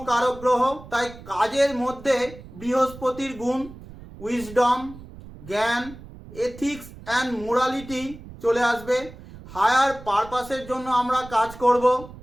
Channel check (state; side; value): noise; right; rumble, 17 dB below the sound